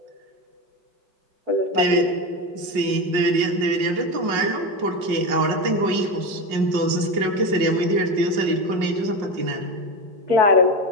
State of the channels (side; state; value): left; late; 5.6 ms